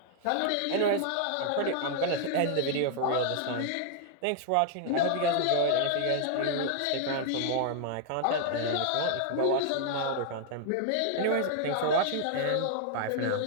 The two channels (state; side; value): different; both; correlation 0.00